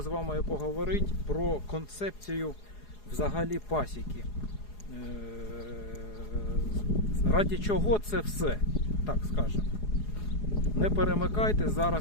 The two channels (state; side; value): late; right; 4.8 ms